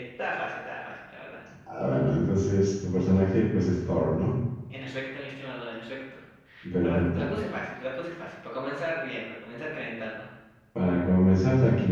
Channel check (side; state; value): both; identical; correlation 1.00